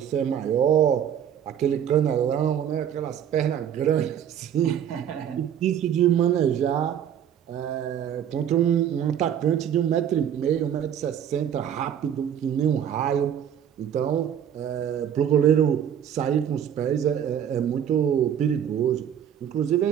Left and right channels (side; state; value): left; quieter; 9.3 dB